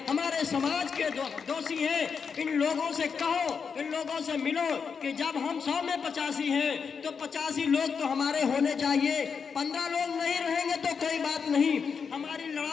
हमारे समाज के दोषी हैं। इन लोगों से कहो, इन लोगों से मिलो कि जब हम 100 में 85 हैं तो 85 लोग तो हमारे होने चाहिए। 15 लोग नहीं रहेंगे तो कोई बात नहीं, हमारी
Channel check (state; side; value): quieter; right; 6.0 dB